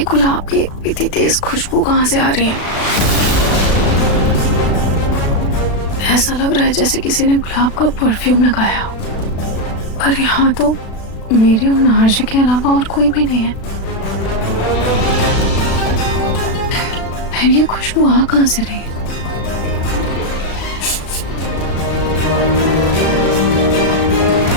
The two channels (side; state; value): right; late; 36 ms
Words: गुलाब की इतनी तेज खुशबू कहाँ से आ रही है? ऐसा लग रहा है जैसे किसी ने गुलाब का परफ्यूम लगाया हो। पर यहाँ तो मेरे और नार्जी के अलावा और कोई भी नहीं है। फिर ये खुशबू आ कहाँ से रही है?